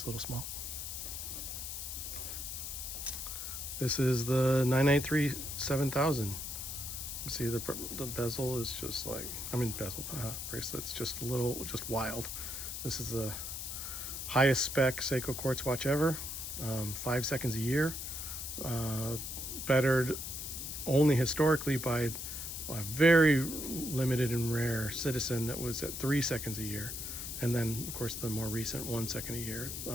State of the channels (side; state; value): left; noise; hiss, 6 dB below the sound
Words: a little small. This is the 993 7000. You see the bezel is just like, I mean, bracelets just a little, just wild. This is the highest spec Seiko quartz watch ever. 5 seconds a year. Bettered only historically by a very limited and rare Citizen that was at 3 seconds a year. and then of course the more recent 1 second a year